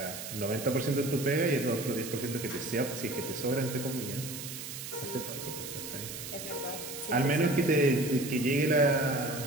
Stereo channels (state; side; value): noise; right; hiss, 9 dB below the sound